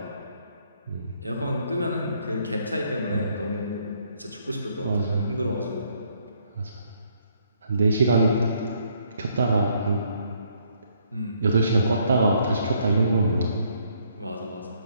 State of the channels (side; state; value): both; inverted; correlation -0.69